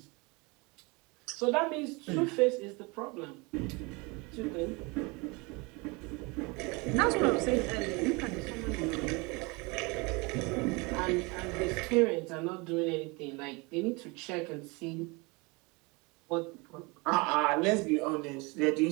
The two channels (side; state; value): left; quieter; 27.1 dB